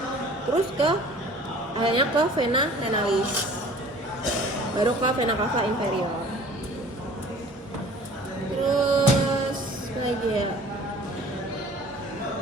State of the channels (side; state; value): both; normal; correlation 0.48